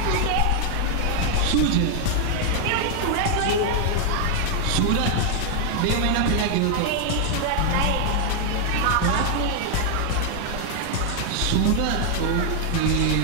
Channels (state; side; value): different; both; correlation 0.00